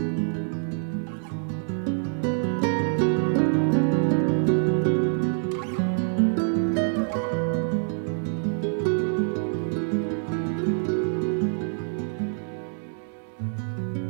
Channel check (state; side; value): silent; left; 61 dB below the other